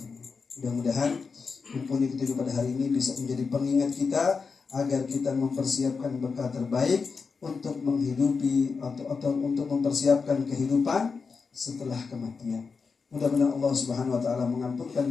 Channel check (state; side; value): quieter; right; 5.0 dB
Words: Mudah-mudahan mumpuni kita pada hari ini bisa menjadi pengingat kita agar kita mempersiapkan bekal terbaik untuk menghidupi atau untuk mempersiapkan kehidupan setelah kematian. Mudah-mudahan Allah Subhanahu wa taala mengampunkan